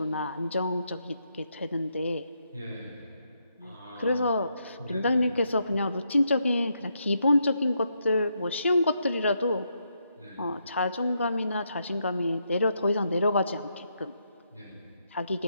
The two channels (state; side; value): inverted; both; correlation -0.79